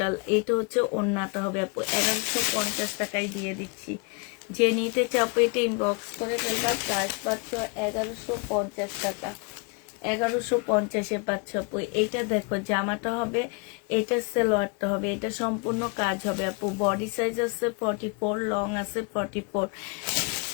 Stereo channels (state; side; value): quieter; right; 31.5 dB